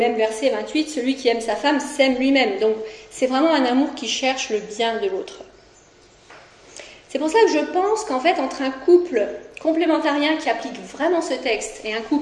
verset 28, « Celui qui aime sa femme s'aime lui-même ». Donc c'est vraiment un amour qui cherche le bien de l'autre. C'est pour ça que je pense qu'en fait, entre un couple complémentarien qui applique vraiment ce texte et un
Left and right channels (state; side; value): identical; both; correlation 1.00